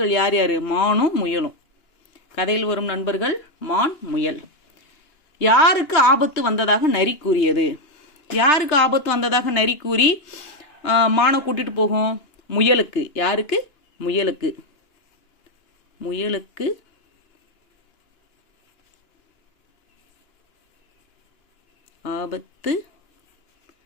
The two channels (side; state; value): right; late; 2.9 ms